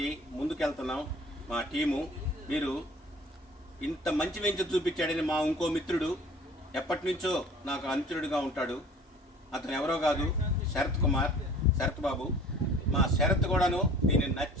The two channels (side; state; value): both; normal; correlation 0.48